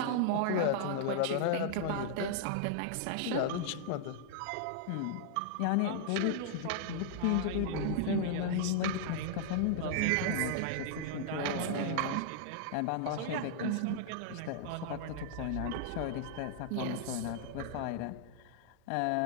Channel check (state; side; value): different; both; correlation -0.01